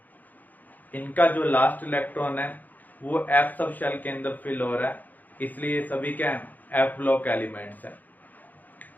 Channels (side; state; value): right; late; 0.083 ms